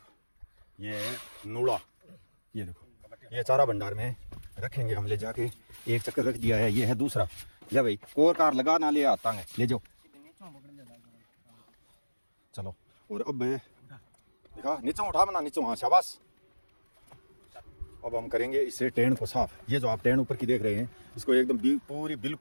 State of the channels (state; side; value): inverted; both; correlation -1.00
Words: ये नूड़ा, ये देखो ये चारा भंडार में रखेंगे हम, ले जाके एक चक्कर रख दिया है। ये है दूसरा, ले भाई कोर कार लगा ना ले आता है, ले जाओ चलो। और अब देखा नीचे उठा बना, नीचे, हाँ शाबाश। अब हम करेंगे इससे टेन को साफ। ये जो आप टेन ऊपर की देख रहे हैं इसको एकदम पूरी